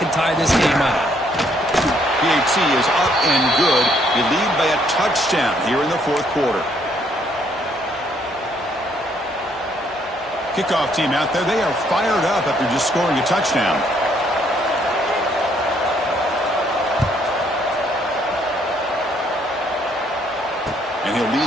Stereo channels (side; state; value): both; normal; correlation 0.68